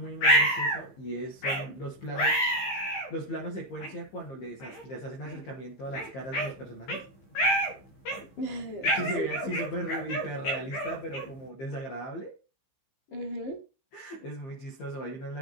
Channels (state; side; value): late; right; 15 ms